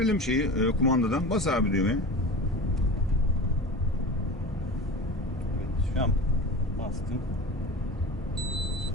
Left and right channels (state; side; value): normal; both; correlation 0.33